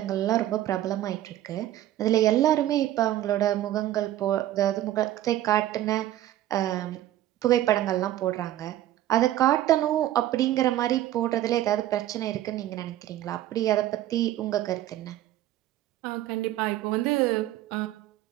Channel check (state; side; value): quieter; left; 13.6 dB